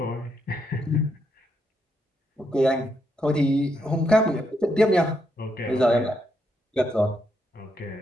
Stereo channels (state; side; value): normal; both; correlation 0.79